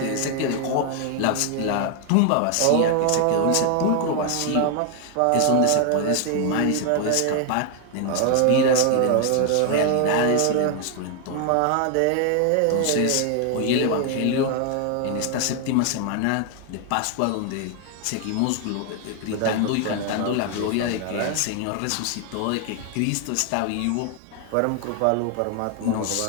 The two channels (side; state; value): both; different; correlation 0.00